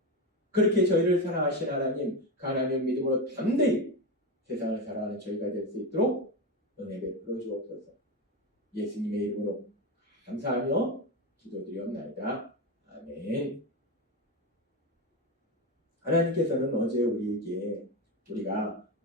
그렇게 저희를 사랑하신 하나님, 그 하나님의 믿음으로 담대히 세상을 살아가는 저희가 될 수 있도록 은혜 베풀어 주옵소서. 예수님의 이름으로 감사하며 기도드리옵나이다. 아멘. 하나님께서는 어제 우리에게 우리가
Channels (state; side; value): normal; both; correlation 0.15